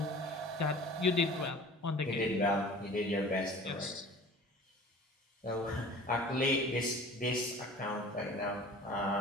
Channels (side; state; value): both; normal; correlation 0.43